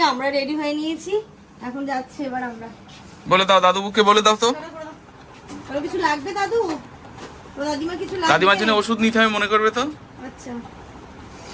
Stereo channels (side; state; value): both; identical; correlation 1.00